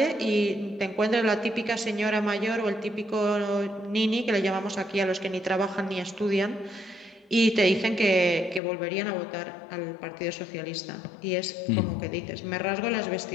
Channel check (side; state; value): right; drops out; at 8.6 s